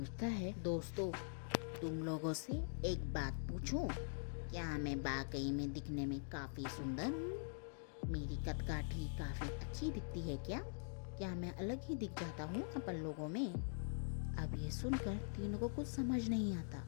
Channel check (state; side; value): silent; right; digital silence